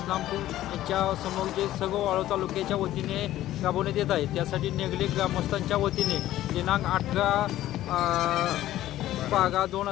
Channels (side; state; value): right; quieter; 14.1 dB